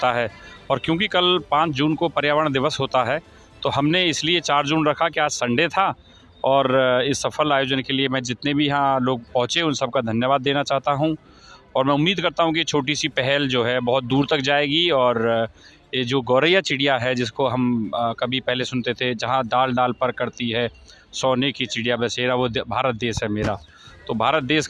है। और क्योंकि कल 5 जून को पर्यावरण दिवस होता है, तो हमने इसलिए 4 जून रखा कि आज संडे था। और इस सफल आयोजन के लिए मैं जितने भी यहाँ लोग पहुँचे उन सबका धन्यवाद देना चाहता हूँ। और मैं उम्मीद करता हूँ कि छोटी सी पहल जो है बहुत दूर तक जाएगी। और ये जो गौरैया चिड़िया है, जिसको हम कभी पहले सुनते थे, जहाँ डाल डाल पर करती है सोने की चिड़िया बसेरा, वो भारत देश है मेरा। तो भारत देश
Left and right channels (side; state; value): both; identical; correlation 1.00